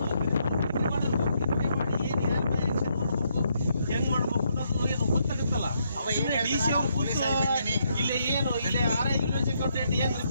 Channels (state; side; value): inverted; both; correlation -0.75